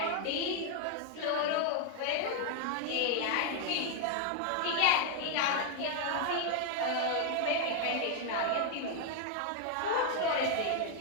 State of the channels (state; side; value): different; both; correlation 0.00